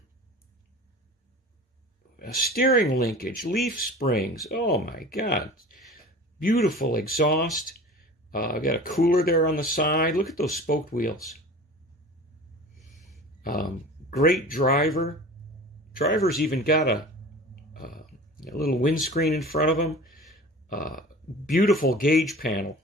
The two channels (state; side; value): normal; both; correlation 0.39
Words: A steering linkage, leaf springs. Oh my God. Beautiful exhaust. I've got a cooler there on the side. Look at those spoked wheels. Great driver. Driver's even got a little windscreen in front of him. Beautiful gauge panel.